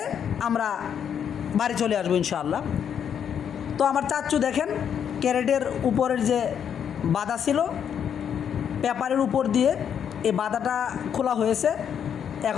আমরা বাড়ি চলে আসবো ইনশাআল্লাহ। তো আমার চাচ্চু দেখেন ক্যারেটের উপরের যে বাধা ছিল, পেপারের উপর দিয়ে এই বাধাটা খোলা হয়েছে।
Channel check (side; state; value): right; quieter; 8.3 dB